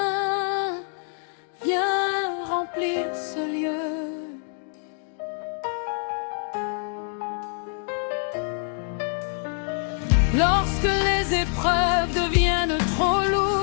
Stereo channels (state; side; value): silent; right; 61 dB below the other